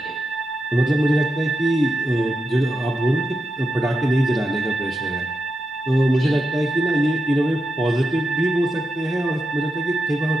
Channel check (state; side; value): normal; both; correlation 0.87